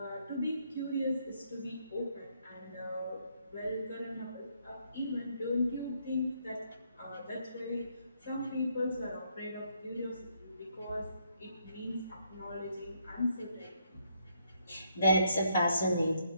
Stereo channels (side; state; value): both; inverted; correlation -0.73